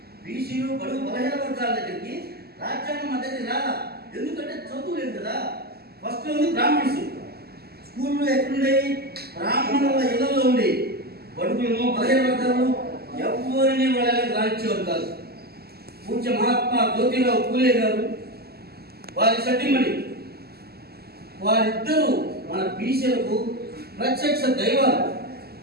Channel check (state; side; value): late; left; 0.46 ms